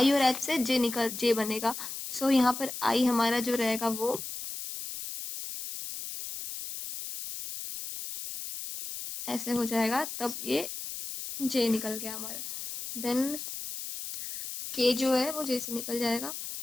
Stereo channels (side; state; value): left; noise; hiss, 7 dB below the sound